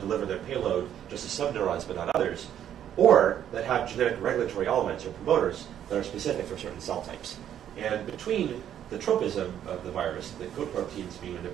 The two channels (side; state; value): left; quieter; 10.2 dB